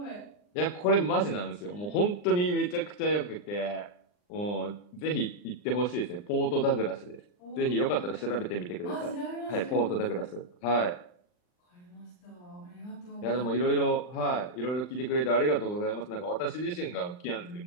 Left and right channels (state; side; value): late; right; 39 ms